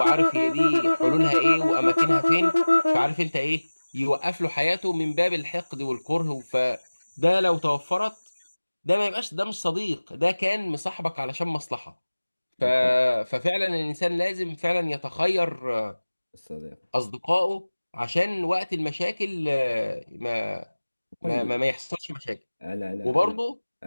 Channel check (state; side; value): inverted; both; correlation -1.00